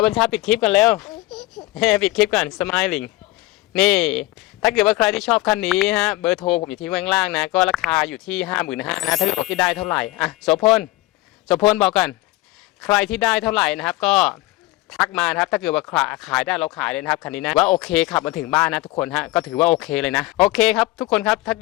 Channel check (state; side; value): quieter; right; 19.3 dB